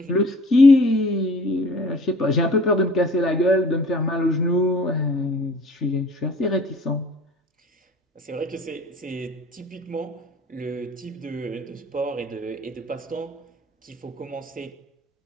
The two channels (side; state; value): both; normal; correlation 0.49